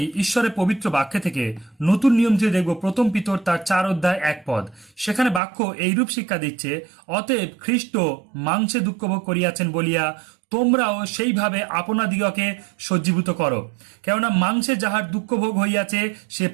ঈশ্বরের পবিত্র বাক্য থেকে নতুন নিয়ম থেকে দেখব প্রথম পিতর তার 4 অধ্যায় 1 পদ। সেখানে বাক্য এইরূপ শিক্ষা দিচ্ছে, অতএব খ্রিস্ট মাংসে দুঃখভোগ করিয়াছেন বলিয়া তোমরাও সেইভাবে আপনাদিগকে সজ্জীভূত করো। কেননা মাংসে যাহার দুঃখভোগ হইয়াছে সে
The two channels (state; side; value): drops out; left; at 5.4 s